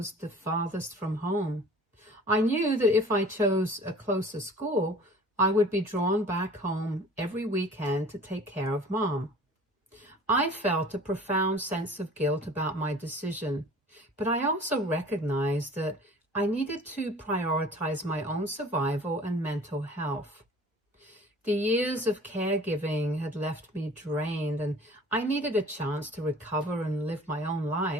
the farthest from home. I knew that if I chose a closer school, I would be drawn back home every weekend to take care of Mom. I felt a profound sense of guilt about my decision, but I also recognized that I needed to prioritize my own survival and mental health. The years of caregiving had left me drained, and I needed a chance to recover and live my own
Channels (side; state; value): both; normal; correlation 0.46